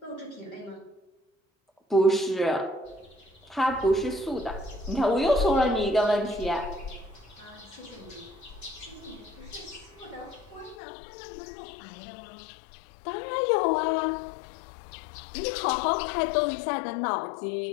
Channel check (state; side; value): drops out; right; at 10.8 s